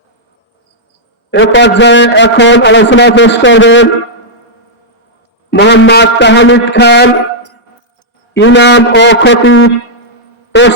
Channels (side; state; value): both; normal; correlation -0.07